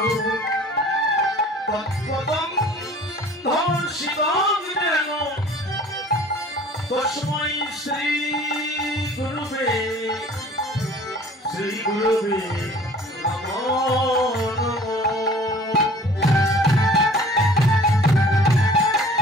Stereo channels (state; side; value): normal; both; correlation 0.49